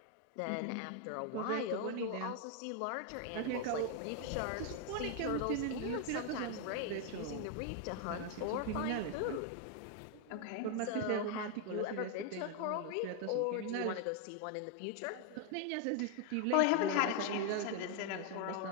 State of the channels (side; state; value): both; different; correlation 0.01